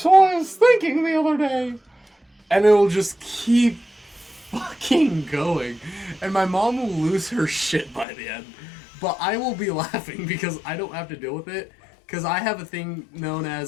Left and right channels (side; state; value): right; drops out; at 8.1 s